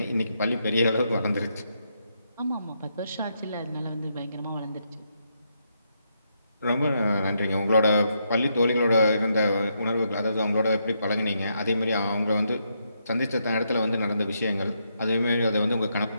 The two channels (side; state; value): both; inverted; correlation -0.79